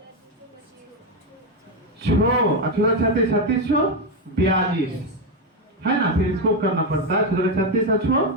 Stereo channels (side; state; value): both; normal; correlation 0.07